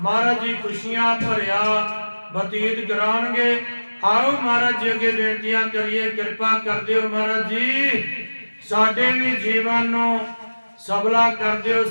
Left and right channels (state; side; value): inverted; both; correlation -1.00